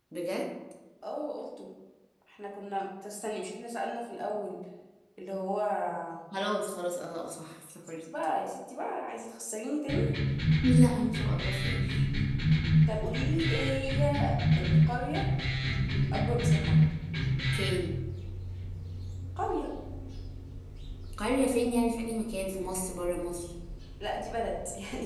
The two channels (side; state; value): both; identical; correlation 1.00